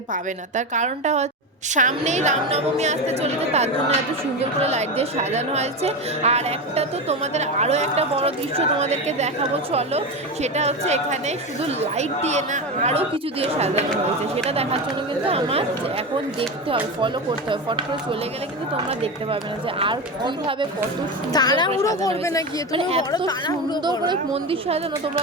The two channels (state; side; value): normal; both; correlation 0.19